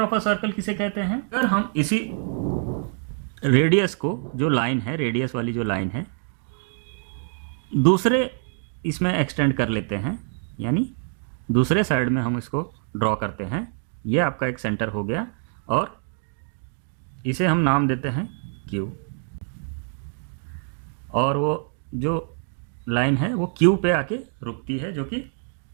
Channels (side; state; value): left; silent; 58 dB below the other